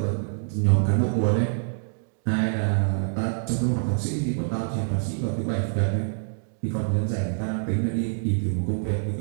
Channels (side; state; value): left; silent; digital silence